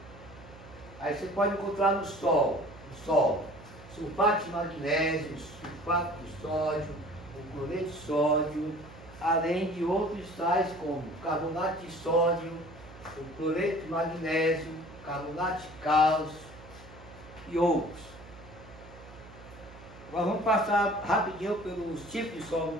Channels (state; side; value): noise; right; hum, 19 dB below the sound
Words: Aí você pode encontrar no solo sulfato de magnésio, sulfato de sódio, o cloreto de sódio, além de outros sais como carbonato de sódio, o cloreto de magnésio, carbonato de cálcio e outros. Agora vamos passar rapidinho pelos tipos de solo no